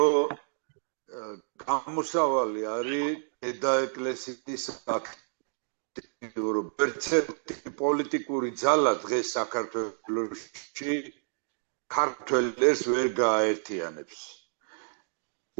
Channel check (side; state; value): left; silent; digital silence